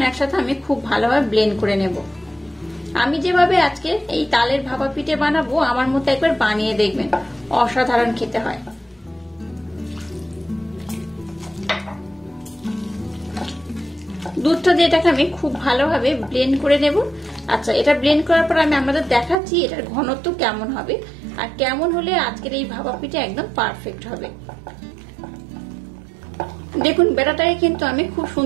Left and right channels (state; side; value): drops out; left; at 19.4 s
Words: একসাথে আমি খুব ভালোভাবে ব্লেন্ড করে নেব। আমি যেভাবে আজকে এই তালের ভাপা পিঠে বানাবো আমার মতো একবার বানিয়ে দেখবেন, অসাধারণ খেতে হয়। দুধটা দিয়ে এটাকে আমি খুব ভালোভাবে ব্লেন্ড করে নেব। আচ্ছা, এটা ব্লেন্ড করার পর আমি আপনাদের দেখাচ্ছি এটার ঘনত্ব কেমন হবে আর কেমন হলে আজকের এই ভাপা পিঠে একদম পারফেক্ট হবে। দেখুন বেটাটাকে কিন্তু আমি খুব